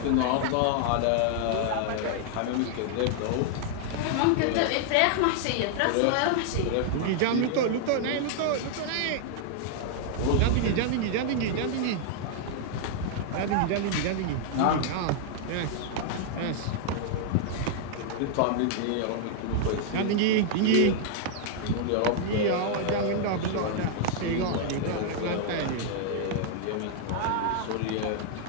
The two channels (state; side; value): different; both; correlation 0.00